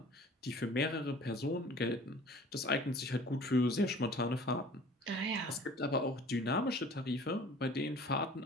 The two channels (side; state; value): both; normal; correlation 0.47